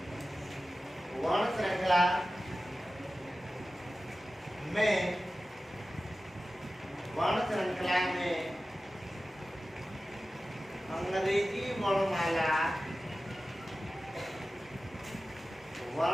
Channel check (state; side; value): normal; both; correlation 0.95